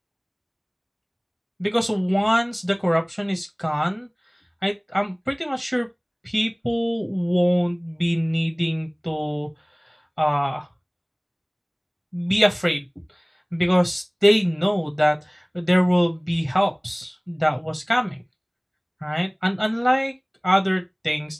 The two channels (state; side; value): identical; both; correlation 1.00